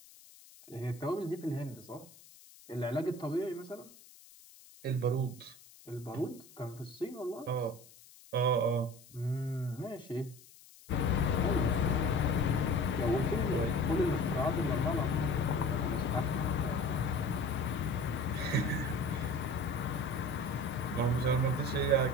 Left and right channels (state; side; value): noise; left; hiss, 22 dB below the sound